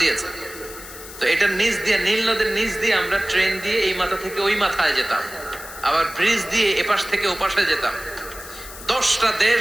দিয়েছেন। তো এটার নিচ দিয়ে, নীল নদের নিচ দিয়ে আমরা ট্রেন দিয়ে এই মাথা থেকে ওই মাথায় যেতাম, আবার ব্রিজ দিয়ে এপাশ থেকে ওপাশে যেতাম। 10টা দেশ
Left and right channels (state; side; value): noise; left; hiss, 14 dB below the sound